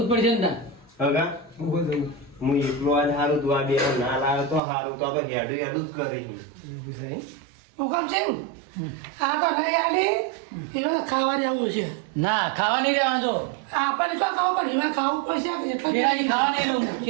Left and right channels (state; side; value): drops out; left; at 4.6 s